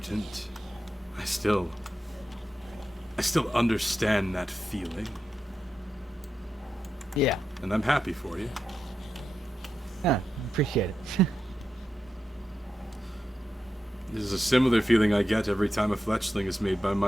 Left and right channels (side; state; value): both; normal; correlation 0.88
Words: I still understand that feeling, Yeah, and I'm happy for you. appreciate it. This is a similar feeling I get every time a fletchling is made by